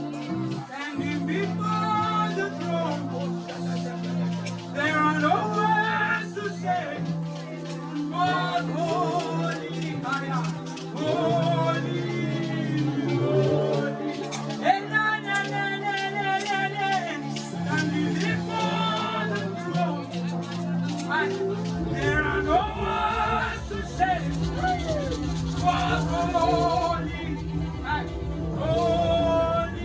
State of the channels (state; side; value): identical; both; correlation 1.00